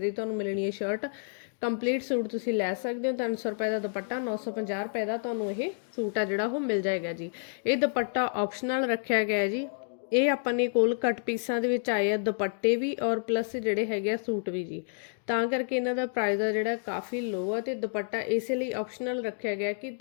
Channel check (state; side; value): silent; right; digital silence